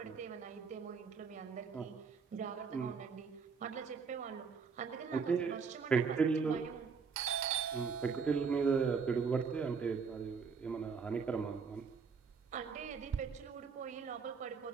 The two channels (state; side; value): quieter; left; 5.7 dB